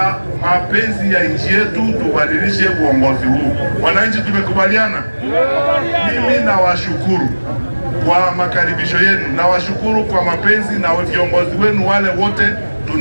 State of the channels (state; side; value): inverted; both; correlation -1.00